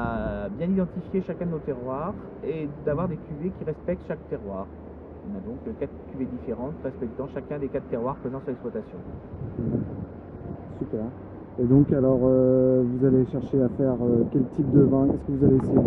bien identifier chacun de nos terroirs et d'avoir des cuvées qui respectent chaque terroir. On a donc 4 cuvées différentes respectant chacun des 4 terroirs présents sur l'exploitation. Super. Et donc alors, vous allez chercher à faire quel type de vin? Qu'est-ce que vous allez essayer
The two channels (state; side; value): identical; both; correlation 1.00